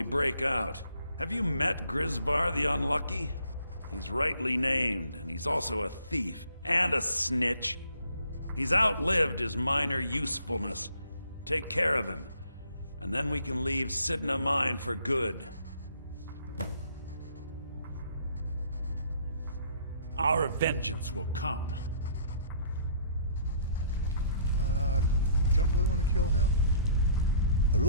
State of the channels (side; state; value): both; inverted; correlation -0.59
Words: break out. Have you met Grisvar the Unlucky? He's rightly named, and he's also a thief and a snitch. He's outlived his minor usefulness. Take care of him, and then we can leave Sidna Mine for good. Our vengeance will come. Don't really want to kill him. I